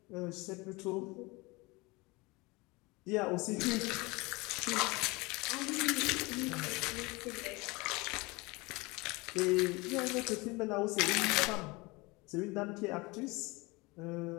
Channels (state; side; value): quieter; right; 24.5 dB